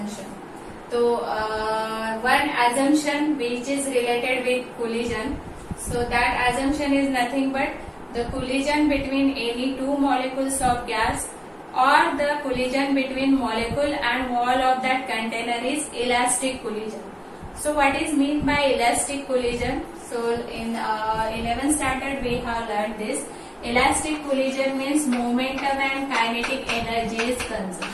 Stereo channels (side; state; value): both; identical; correlation 1.00